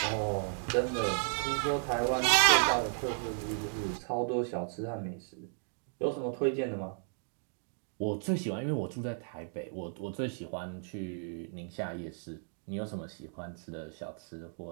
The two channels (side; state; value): left; silent; digital silence